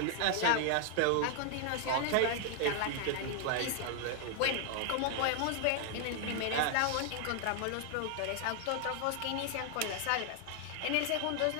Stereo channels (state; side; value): different; both; correlation 0.00